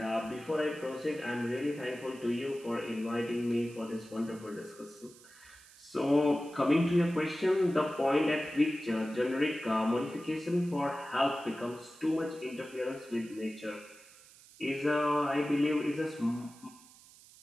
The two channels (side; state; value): right; noise; hiss, 23 dB below the sound